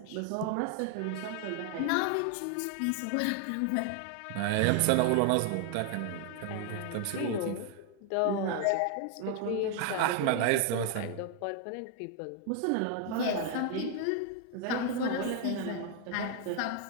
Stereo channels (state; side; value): different; both; correlation 0.00